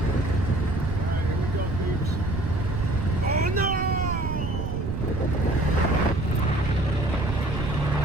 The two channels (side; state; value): right; noise; rumble, 3 dB below the sound